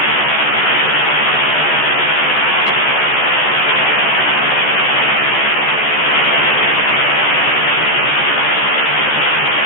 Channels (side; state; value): right; late; 14 ms